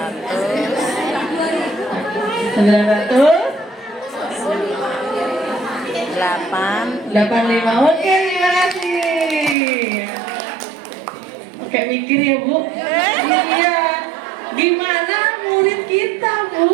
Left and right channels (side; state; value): left; drops out; at 9.6 s